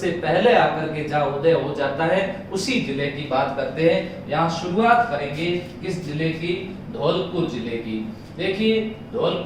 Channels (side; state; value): both; identical; correlation 1.00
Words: पहले आकर के जहां उदय हो जाता है, उसी जिले की बात करते हैं। यहाँ शुरुआत करेंगे किस जिले की? धौलपुर जिले की। देखिए